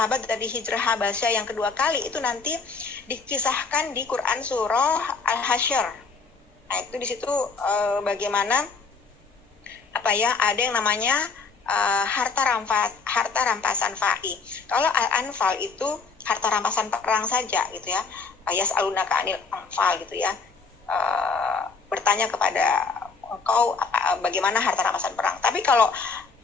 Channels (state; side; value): quieter; right; 4.7 dB